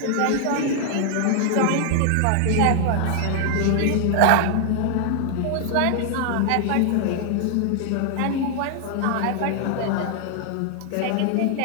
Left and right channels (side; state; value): both; different; correlation 0.00